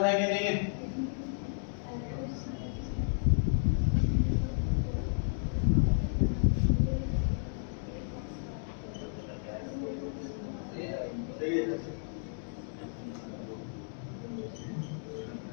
है कि नहीं है?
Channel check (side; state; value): right; silent; digital silence